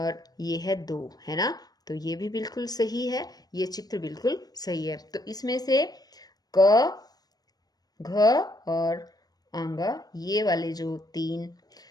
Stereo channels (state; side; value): late; right; 0.19 ms